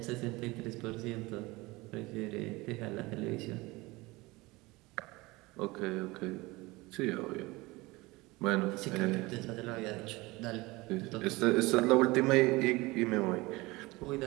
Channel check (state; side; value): quieter; left; 22.1 dB